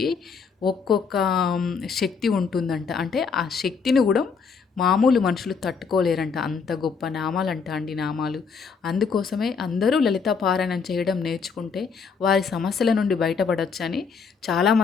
ఒక్కొక్క శక్తి ఉంటుందంట. అంటే ఆ శక్తిని కూడా మామూలు మనుషులు తట్టుకోలేరంట. అంత గొప్ప నామాలంట అండి నామాలు. అందుకోసమే అందరూ లలితా పారాయణం చేయడం నేర్చుకుంటే వారి సమస్యల నుండి బయటపడొచ్చని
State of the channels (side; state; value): right; quieter; 5.6 dB